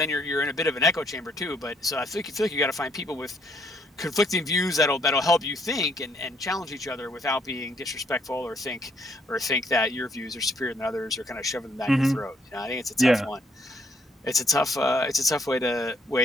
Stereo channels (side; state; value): both; normal; correlation 0.69